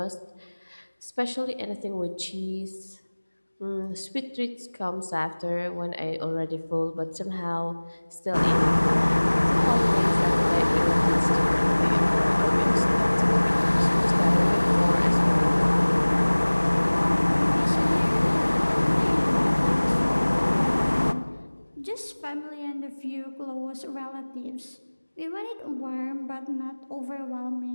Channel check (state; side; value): inverted; both; correlation -1.00